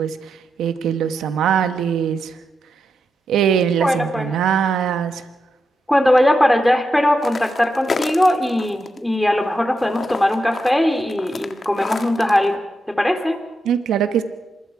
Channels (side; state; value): both; normal; correlation 0.86